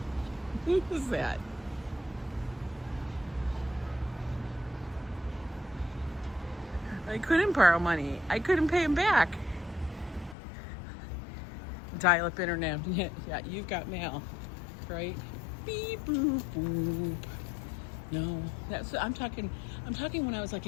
Who was that? I couldn't borrow money. I couldn't pay him back. Dial-up internet. Yeah, you've got mail, right? Beep boop boop. No, that's I'm talking when I was like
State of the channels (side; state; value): right; drops out; at 10.4 s